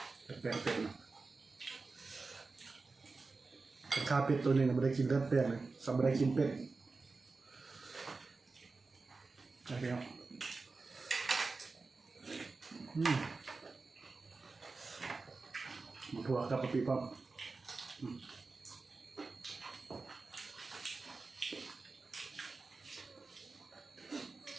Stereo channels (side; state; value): left; quieter; 4.0 dB